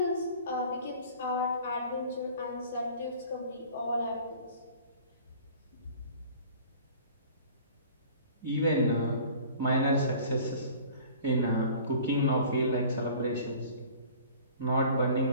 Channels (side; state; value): both; inverted; correlation -0.46